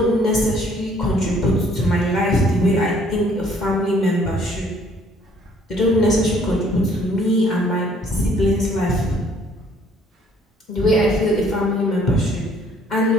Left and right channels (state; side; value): normal; both; correlation 0.61